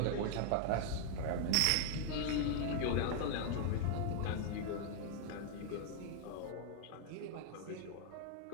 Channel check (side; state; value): both; different; correlation -0.01